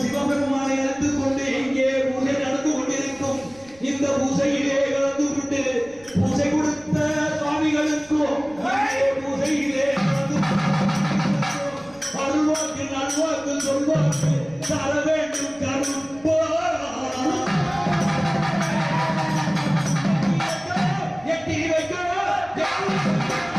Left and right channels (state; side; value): noise; right; rumble, 25 dB below the sound